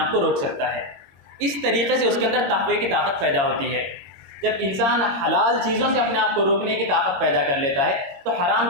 کو روک سکتا ہے۔ اس طریقے سے اس کے اندر تقوی کی طاقت پیدا ہوتی ہے۔ جب انسان حلال چیزوں سے اپنے آپ کو روکنے کی طاقت پیدا کر لیتا ہے تو حرام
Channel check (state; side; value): late; left; 22 ms